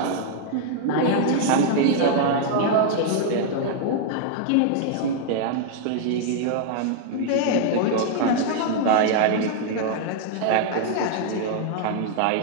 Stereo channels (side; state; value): both; different; correlation -0.01